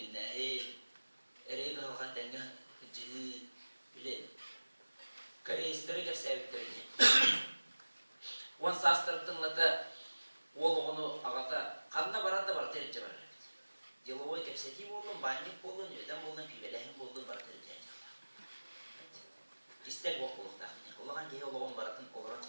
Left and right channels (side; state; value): both; inverted; correlation -1.00